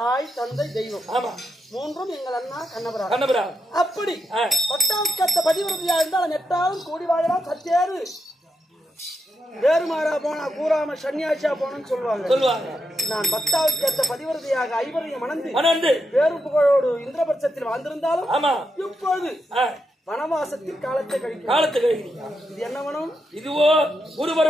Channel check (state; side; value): normal; both; correlation 0.85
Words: தந்தை தெய்வம். மூன்றும் எங்கள் அண்ணா கண்ணபுரா. அப்படி பட்டாக்கத்த பதிவிரதியா இருந்தால் நெட்டாலும் கூடி வாழலாம். சத்தேறு வேறுமாறா போனா கூறாம சன்னியாசியா போனன்னு சொல்லுவாங்க. நான் பத்தாவுக்கேத்த பதிவிரதியாக ஐவரையும் மணந்து வேறு புகழோடு இந்திரபட்சத்தில் வாழ்ந்திருந்தாலும் இப்போது வனவாசத்தில் காலத்தை கழிக்கிறீங்க. இது என்ன வனம்? இதுவோ குருமர